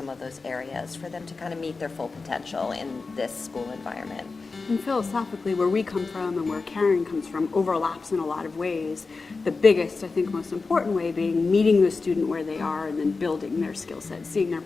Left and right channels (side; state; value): right; quieter; 4.1 dB